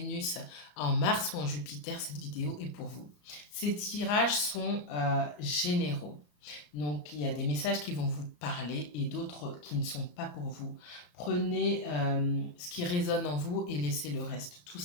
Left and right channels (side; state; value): right; late; 34 ms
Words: en Mars ou en Jupiter, cette vidéo est pour vous. Ces tirages sont généraux. Donc, il y a des messages qui vont vous parler et d'autres qui ne sont pas pour vous. Prenez ce qui résonne en vous et laissez le reste, tout